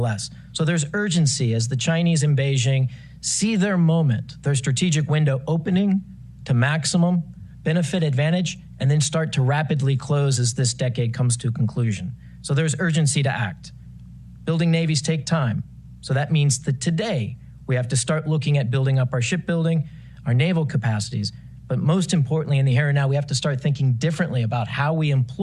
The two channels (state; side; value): identical; both; correlation 1.00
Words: So there's urgency as the Chinese in Beijing see their moment, their strategic window opening to maximum benefit advantage, and then start to rapidly close as this decade comes to a conclusion. So there's urgency to act. Building navies take time. So that means that today we have to start looking at building up our shipbuilding, our naval capacities, but most importantly in the here and now, we have to start thinking differently about how we